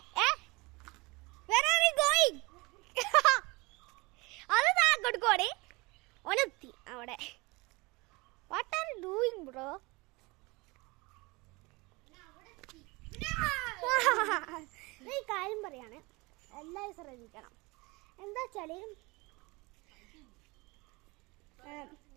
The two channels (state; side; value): quieter; left; 24.9 dB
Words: Where are we going? അത് കൊടുക്കോടെ ഒനെത്തി അവിടെ. What are you doing bro? ഈ കാര്യം പറയാണ്, എല്ലാവരും ശ്രദ്ധിക്കണം. എന്താ വെച്ചാൽ